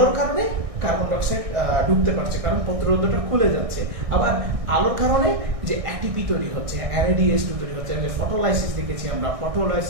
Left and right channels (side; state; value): left; late; 1.6 ms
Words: কারণে কার্বন ডাই অক্সাইড ঢুকতে পারছে, কারণ পত্ররন্ধ্রটা খুলে যাচ্ছে। আবার আলোর কারণে যে অ্যাটিপি তৈরি হচ্ছে, NADH2 তৈরি হচ্ছে, ফটোলাইসিস দেখেছি আমরা,